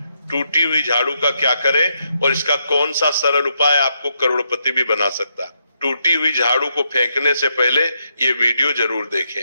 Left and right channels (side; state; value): both; inverted; correlation -0.80